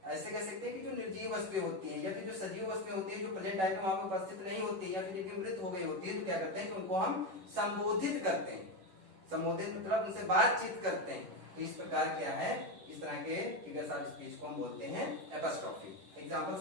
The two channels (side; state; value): left; late; 10 ms